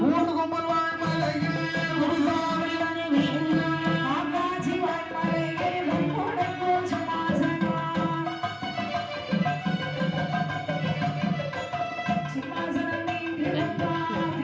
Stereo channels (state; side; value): identical; both; correlation 1.00